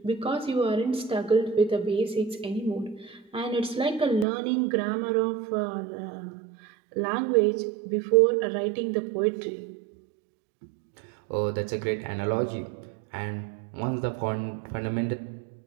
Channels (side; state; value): left; drops out; at 4.2 s